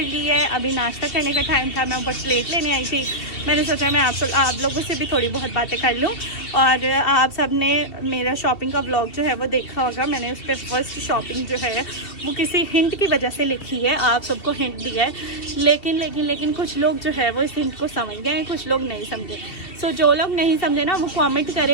ली है, अभी नाश्ता करने का टाइम था, मैं ऊपर प्लेट लेने आई थी। मैंने सोचा मैं आप लोगों से भी थोड़ी बहुत बातें कर लूँ। और आप सब ने मेरा शॉपिंग का व्लॉग जो है वो देखा होगा, मैंने उस पर फर्स्ट शॉपिंग जो है वो किसी हिंट की वजह से लिखी है, आप सबको हिंट दिया है, लेकिन कुछ लोग जो है वो इस हिंट को समझ गए हैं, कुछ लोग नहीं समझे। सो जो लोग नहीं समझे ना वो कमेंट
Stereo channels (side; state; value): right; late; 2.7 ms